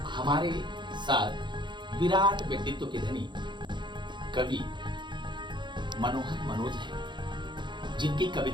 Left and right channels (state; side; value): late; left; 0.22 ms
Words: हमारे साथ विराट व्यक्तित्व के धनी कवि मनोहर मनोज हैं, जिनकी